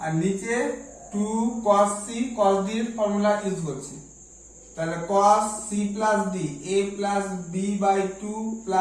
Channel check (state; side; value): identical; both; correlation 1.00